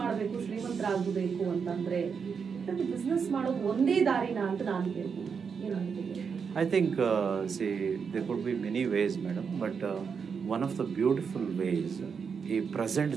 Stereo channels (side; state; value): left; quieter; 6.1 dB